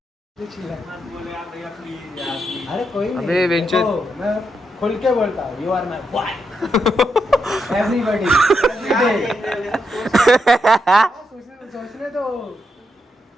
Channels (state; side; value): normal; both; correlation 0.82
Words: अरे कोई नहीं अबे वेंचर। देखो, मैं खुल के बोलता हूँ you are my boy everybody सोचने तो